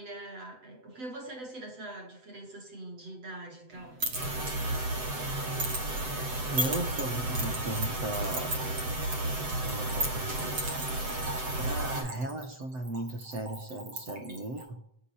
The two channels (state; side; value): late; left; 7.9 ms